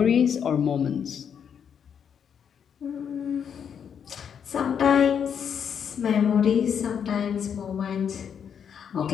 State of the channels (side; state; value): right; quieter; 7.8 dB